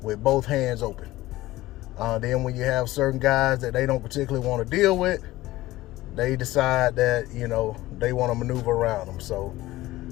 with both hands open. Then when you have certain guys that they don't particularly want to deal with, they decide that, they want to maneuver around them. So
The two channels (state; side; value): quieter; right; 17.3 dB